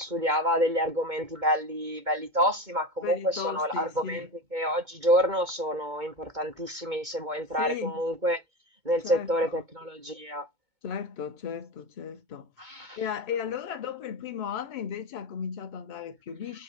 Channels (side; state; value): left; late; 2.2 ms